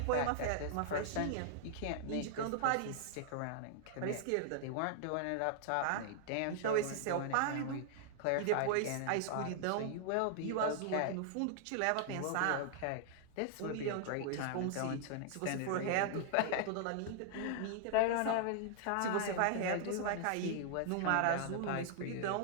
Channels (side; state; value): both; different; correlation -0.01